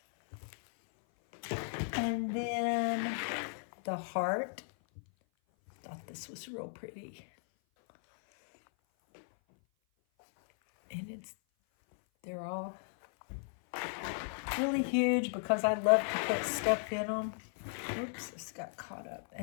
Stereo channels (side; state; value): right; silent; 54 dB below the other